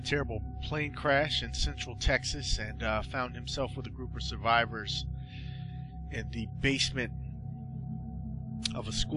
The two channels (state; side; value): identical; both; correlation 1.00